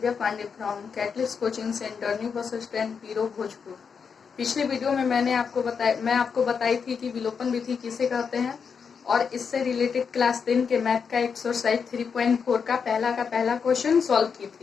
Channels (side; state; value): right; quieter; 6.2 dB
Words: Pandey from catalyst coaching centre new bus stand Piro Bhojpur. पिछले video में मैं आपको बताई थी कि विलोपन विधि किसे कहते हैं और इससे रिलेटेड क्लास 10 के मैथ का एक्सरसाइज 3.4 का पहला क्वेश्चन सॉल्व की